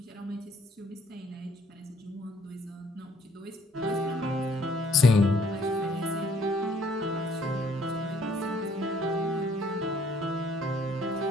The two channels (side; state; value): both; normal; correlation 0.62